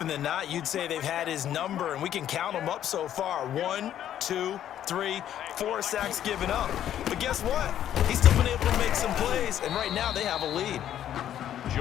than not, you'd say they've had his number, and we can count them up so far. 1, 2, 3, 4 sacks given up. But guess what? He's still been able to make some plays, and right now they have a lead.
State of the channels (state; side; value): quieter; right; 10.9 dB